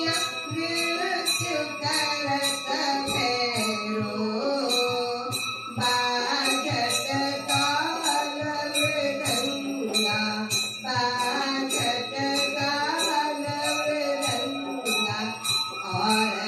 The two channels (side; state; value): both; identical; correlation 1.00